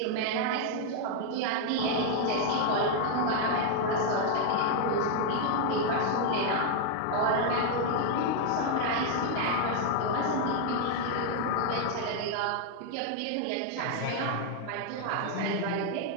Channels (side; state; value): both; different; correlation 0.00